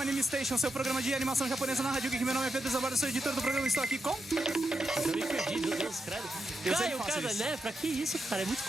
Station, seu programa de animação japonesa na Rádio Geek. Meu nome é Pedro Zabardo, sou editor do programa e estou aqui com... Eu me perdi, meu Deus, credo. Caio, cara, né? Pra que isso, cara? É muito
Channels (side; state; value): both; normal; correlation 0.85